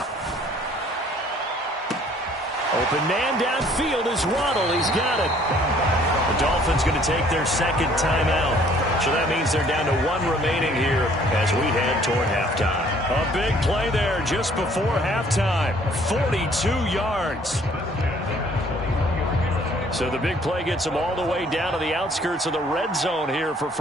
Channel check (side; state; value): both; normal; correlation 0.59